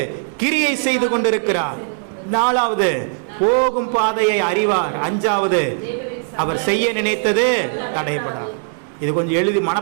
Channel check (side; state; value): left; silent; 66 dB below the other